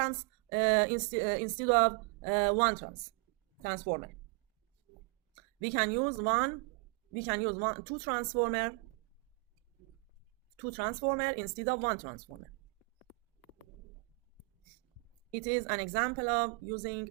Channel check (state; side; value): quieter; left; 31.1 dB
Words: instead of one transformer. We can use two transformer instead of one transformer. It is an example of using